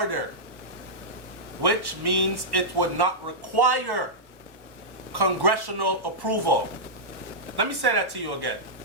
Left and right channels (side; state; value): left; late; 1.1 ms